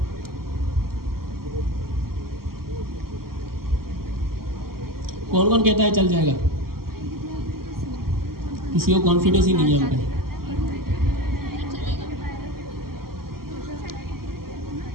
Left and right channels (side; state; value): left; late; 0.93 ms